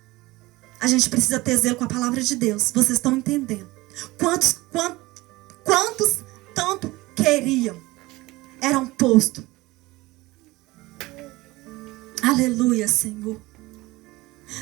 A gente precisa ter zelo com a palavra de Deus. Vocês estão entendendo? Quantos tanto queriam, eram postos. Aleluia, Senhor.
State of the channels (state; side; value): quieter; left; 20.3 dB